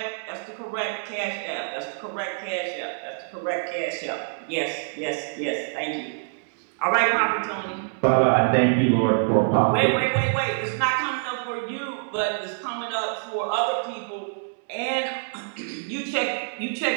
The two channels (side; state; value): left; silent; 61 dB below the other